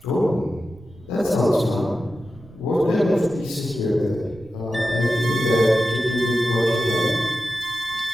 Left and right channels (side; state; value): right; noise; rumble, 22 dB below the sound